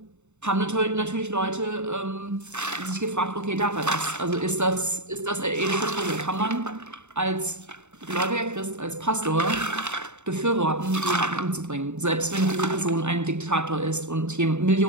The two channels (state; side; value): late; left; 0.83 ms